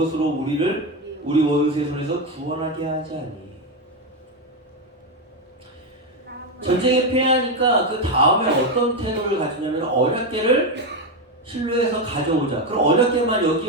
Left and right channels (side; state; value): both; normal; correlation 0.09